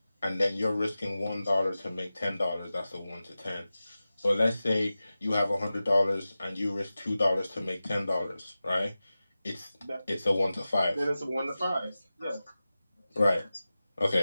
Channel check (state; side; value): inverted; both; correlation -0.95